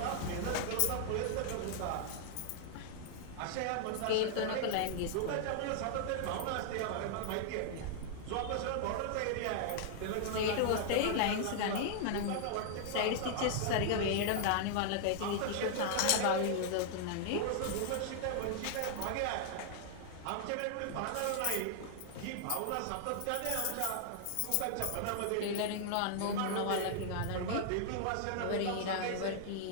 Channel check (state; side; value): different; both; correlation -0.01